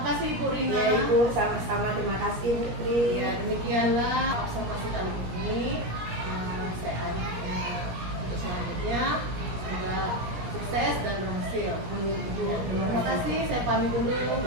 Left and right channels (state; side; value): late; left; 17 ms